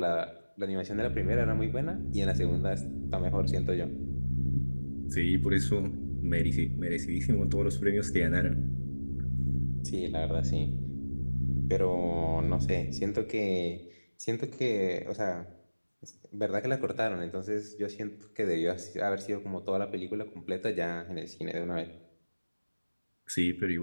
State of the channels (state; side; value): inverted; both; correlation -1.00